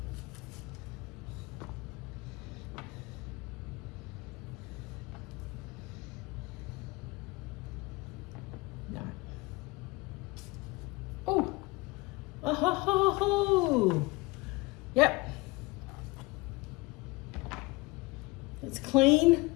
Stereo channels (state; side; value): quieter; right; 23.8 dB